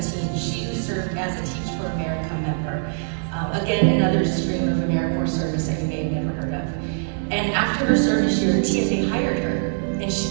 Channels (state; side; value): silent; left; digital silence